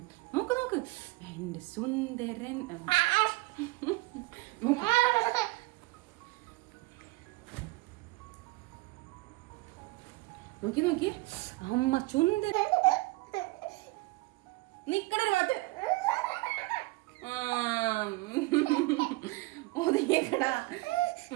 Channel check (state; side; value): quieter; left; 22.5 dB